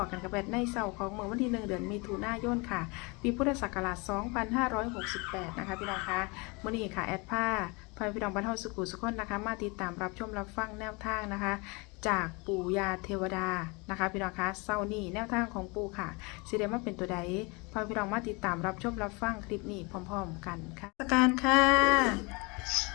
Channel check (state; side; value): quieter; right; 28.2 dB